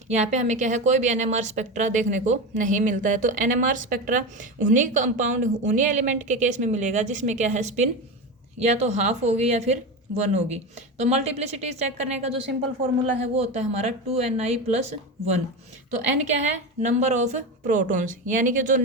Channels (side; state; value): both; normal; correlation 0.21